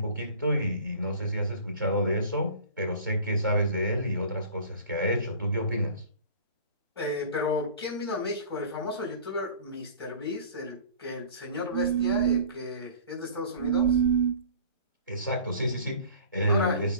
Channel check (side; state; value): both; inverted; correlation -0.44